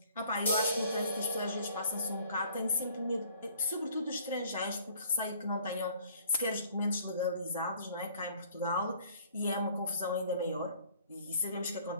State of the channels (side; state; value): both; inverted; correlation -0.56